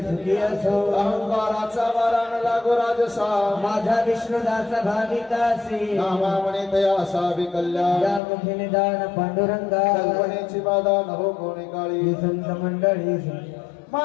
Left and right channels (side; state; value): right; drops out; at 8.2 s